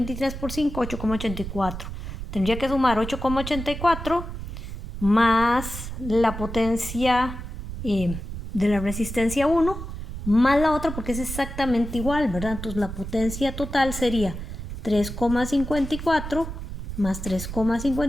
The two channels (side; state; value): right; noise; rumble, 8 dB below the sound